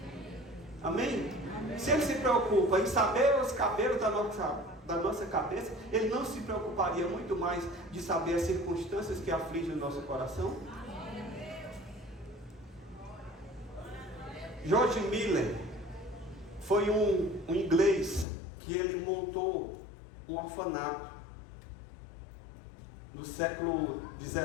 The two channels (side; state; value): right; drops out; at 18.2 s